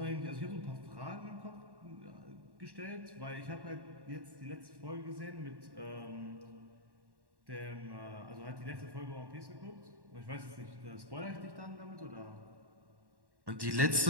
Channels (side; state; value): left; late; 1.1 ms